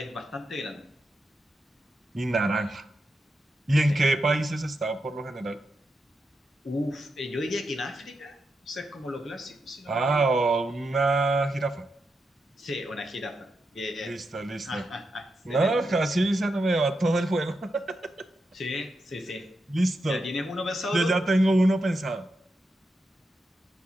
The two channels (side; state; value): both; normal; correlation 0.86